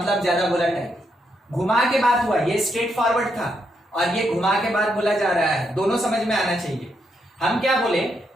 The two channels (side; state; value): both; normal; correlation 0.79